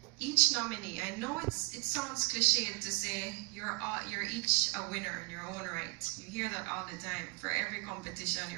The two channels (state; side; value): quieter; left; 32.4 dB